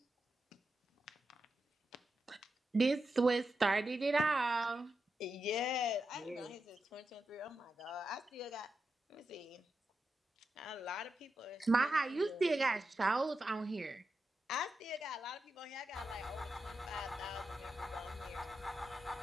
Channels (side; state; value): both; normal; correlation 0.88